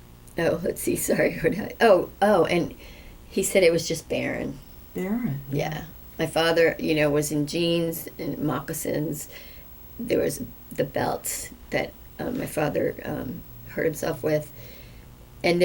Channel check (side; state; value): both; identical; correlation 1.00